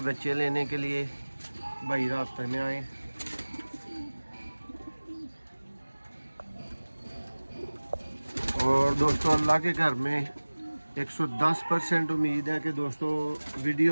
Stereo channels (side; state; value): both; inverted; correlation -1.00